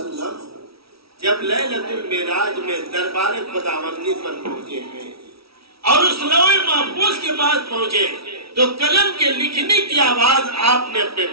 जब लैलतुल मेराज में दरबार खुदावंदी पर पहुंचे हैं और उस लौहे महफूज के पास पहुंचे तो कलम के लिखने की आवाज आपने अपने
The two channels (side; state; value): left; late; 0.76 ms